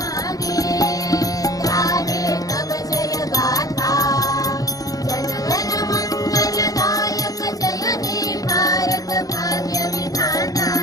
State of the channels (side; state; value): right; late; 0.17 ms